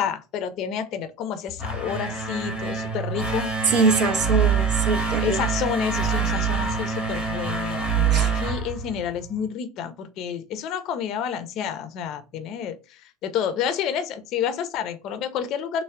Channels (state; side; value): normal; both; correlation 0.34